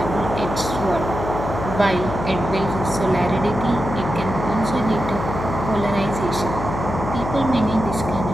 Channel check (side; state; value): left; noise; hum, 6 dB below the sound